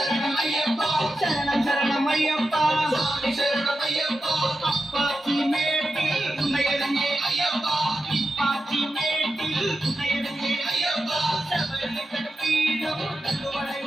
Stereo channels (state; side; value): normal; both; correlation 0.90